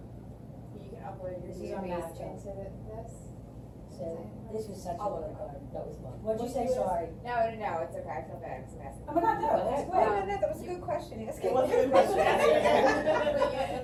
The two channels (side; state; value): both; identical; correlation 1.00